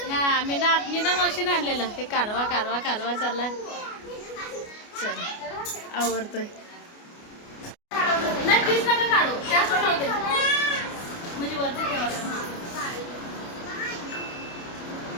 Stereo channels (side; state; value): right; late; 29 ms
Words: हा मीना मावशीने आणलेलं. ते कालवा कालवा कालवा चाललाय. चल आवडतोय. नाही प्लीज नका काढू. जास्त नव्हते म्हणजे वरती ठेवा.